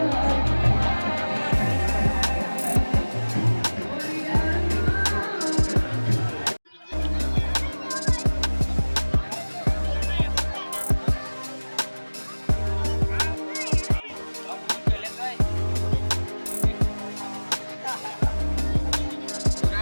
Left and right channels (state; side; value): inverted; both; correlation -1.00